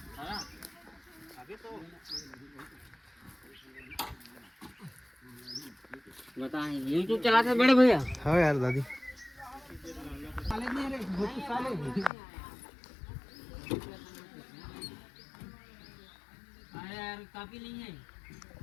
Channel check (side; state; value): right; drops out; at 12.1 s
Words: बताएं YouTube चलाते हैं बड़े भैया? हाँ यार दादी। यार काफी नहीं है,